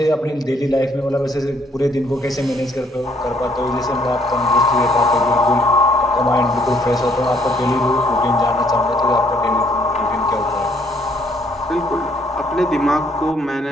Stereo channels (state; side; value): normal; both; correlation 0.66